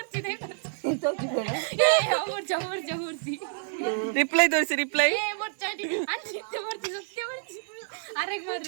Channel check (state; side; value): silent; left; 59 dB below the other